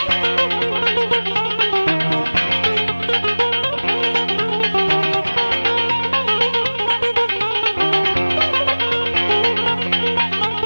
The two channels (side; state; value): both; inverted; correlation -1.00